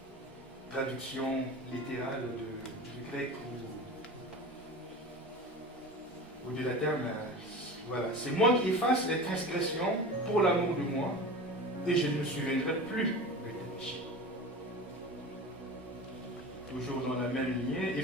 traduction littérale du grec au bout de la terme, voilà, c'est moi qui efface les transgressions pour l'amour de moi, et je ne me souviendrai plus de tes péchés. Toujours dans la même lignée,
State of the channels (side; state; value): both; normal; correlation 0.32